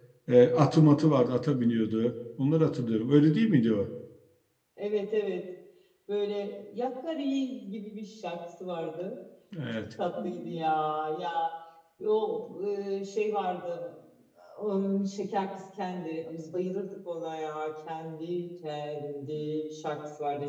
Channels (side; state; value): both; identical; correlation 1.00